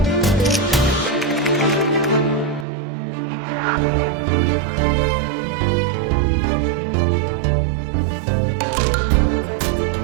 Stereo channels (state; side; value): drops out; left; at 2.7 s